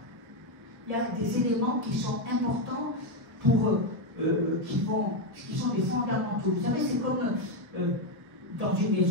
Il y a des éléments qui sont importants pour, qui sont des fondamentaux. Vous savez, c'est comme dans une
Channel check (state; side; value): late; left; 1.3 ms